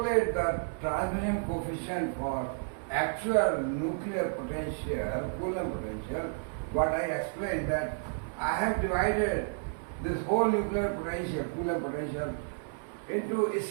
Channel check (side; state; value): left; silent; 57 dB below the other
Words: the transmission coefficient for actual nuclear potential, Coulomb potential, what I explained that I have divided this whole nuclear potential, Coulomb potential, into